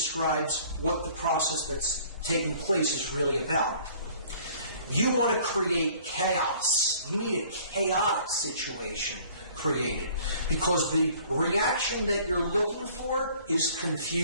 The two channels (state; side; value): inverted; both; correlation -0.54